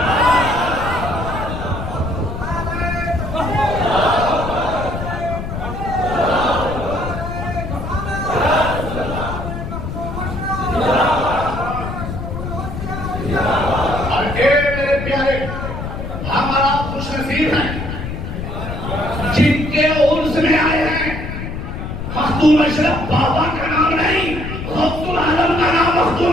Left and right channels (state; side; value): noise; left; rumble, 6 dB below the sound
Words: جن کے عرس میں آئے ہیں مخدوم اشرف بابا کا نام نہیں، غوث العالم کا نام